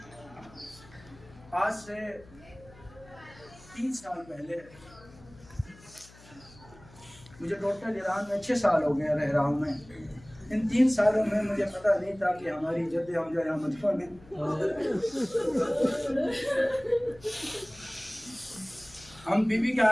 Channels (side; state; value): left; noise; hum, 23 dB below the sound